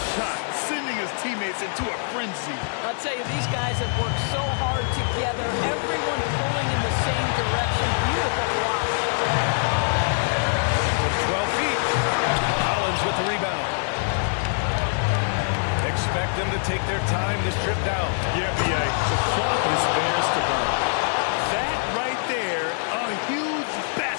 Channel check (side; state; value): right; silent; digital silence